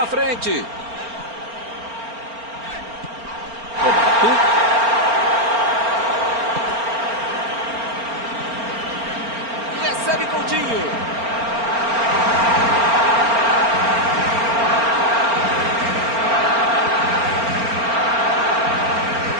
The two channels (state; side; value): late; left; 4.4 ms